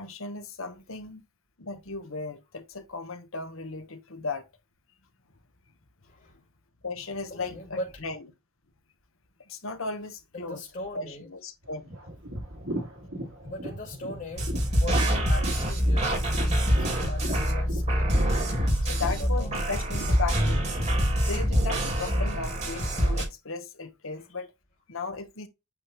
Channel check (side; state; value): both; normal; correlation 0.70